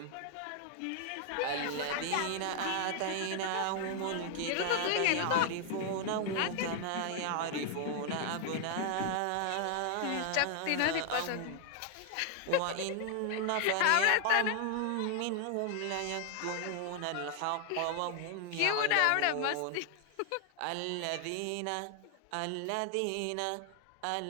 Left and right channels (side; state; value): both; different; correlation 0.00